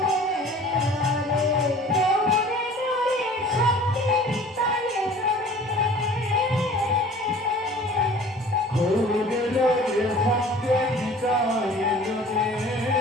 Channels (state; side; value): normal; both; correlation 0.47